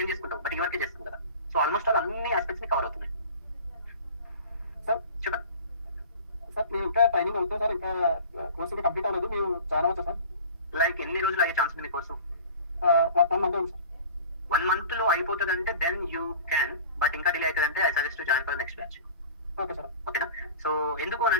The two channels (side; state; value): both; inverted; correlation -0.40